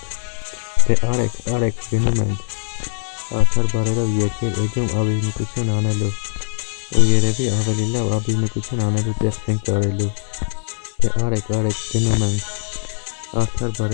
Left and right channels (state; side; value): silent; right; digital silence